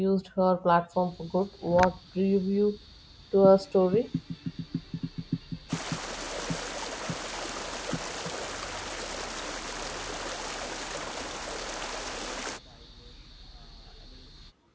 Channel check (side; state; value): both; identical; correlation 1.00